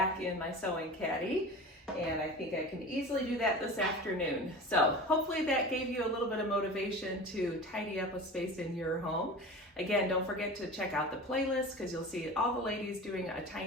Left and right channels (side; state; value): both; normal; correlation 0.34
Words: in my sewing caddy. And I think I can easily do that this afternoon. So hopefully that gave you a little bit of motivation to tidy up a space in your home. Again, don't forget to check out the playlist because you'll see all the ladies doing a